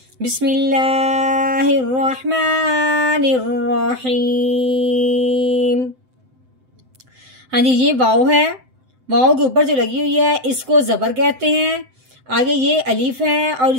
बिस्मिल्लाहिर रहमानिर रहीम। हाँ जी, ये वाव है, वाव के ऊपर जो लगी हुई है इसको जबर कहते हैं। आगे ये अलीफ है और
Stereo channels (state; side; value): late; left; 7.8 ms